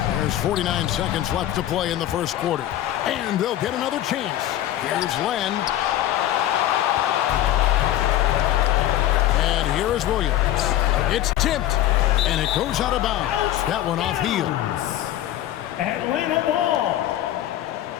There's 49 seconds left to play in the first quarter. And they'll get another chance. Here's Len. And here is Williams. It's tipped, and it goes out of bounds. That one off heel. Atlanta ball.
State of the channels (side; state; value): right; quieter; 12.9 dB